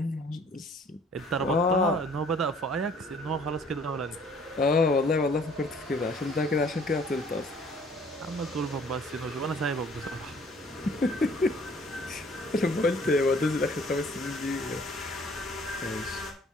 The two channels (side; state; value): both; normal; correlation 0.56